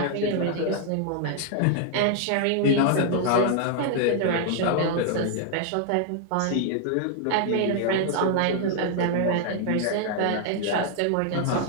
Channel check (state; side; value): different; both; correlation 0.00